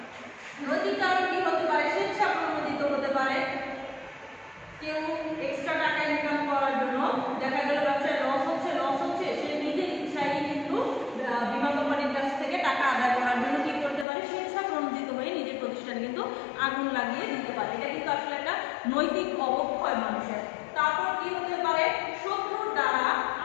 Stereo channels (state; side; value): drops out; right; at 14.1 s